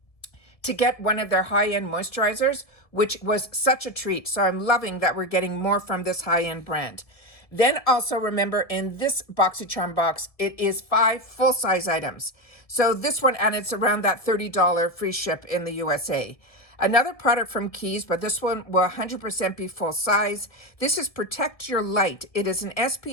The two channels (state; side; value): late; right; 1.7 ms